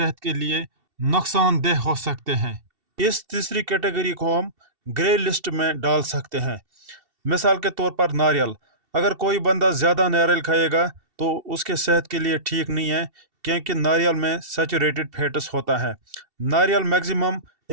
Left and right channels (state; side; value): late; left; 2.7 ms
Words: के लिए नुकसानदेह हो सकते हैं। इस तीसरी कैटेगरी को हम ग्रे लिस्ट में डाल सकते हैं। मिसाल के तौर पर नारियल। अगर कोई बंदा ज़्यादा नारियल खाएगा तो उसके सेहत के लिए ठीक नहीं है, क्योंकि नारियल में सैचुरेटेड फैट्स होता है। नारियल मैक्सिमम